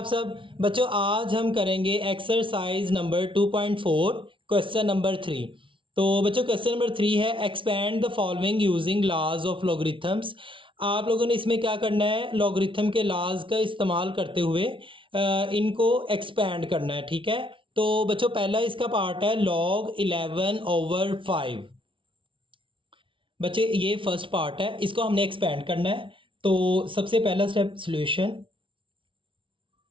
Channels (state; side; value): late; left; 0.25 ms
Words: सब? बच्चों, आज हम करेंगे एक्सरसाइज नंबर 2.4 क्वेश्चन नंबर 3। तो बच्चों, क्वेश्चन नंबर 3 है expand the following using laws of logarithms. आप लोगों ने इसमें क्या करना है, लॉगरिथम के लॉज का इस्तेमाल करते हुए इनको एक्सपेंड करना है। ठीक है, तो बच्चों पहला इसका पार्ट है log 11/5। बच्चे ये फर्स्ट पार्ट है, इसको हमने एक्सपेंड करना है। तो सबसे पहला स्टेप सॉल्यूशन।